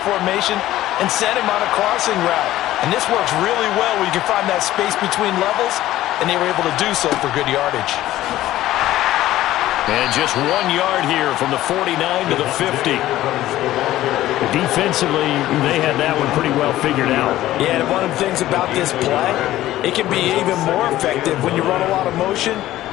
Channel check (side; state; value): right; quieter; 14.7 dB